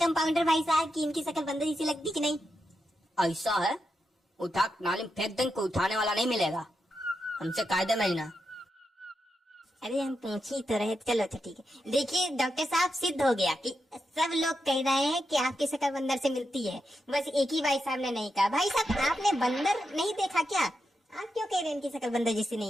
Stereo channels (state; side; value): normal; both; correlation 0.86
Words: भाई साहब कि इनकी शक्ल बंदर जैसी लगती कि नहीं? ऐसा है, उठा नाली में फेंक देंगे, कोई उठाने वाला नहीं मिलेगा, हमसे कायदे में ही ना। अरे हम पूछ ही तो रहे, चलो अच्छा ठीक है। देखिए डॉक्टर साहब, सिद्ध हो गया कि सब लोग कह रहे हैं कि आपकी शक्ल बंदर से मिलती है, बस एक ही भाई साहब ने नहीं कहा। भाई साहब, आपने बंदर नहीं देखा क्या? आप क्यों कह रहे हैं इनकी शक्ल बंदर जैसी